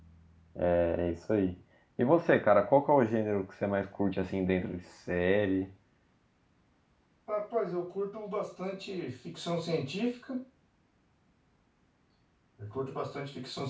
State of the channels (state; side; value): identical; both; correlation 1.00